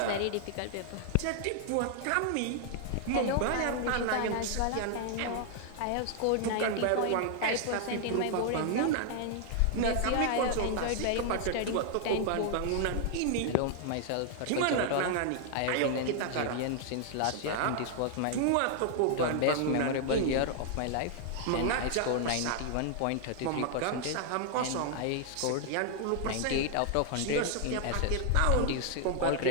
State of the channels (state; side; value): different; both; correlation 0.00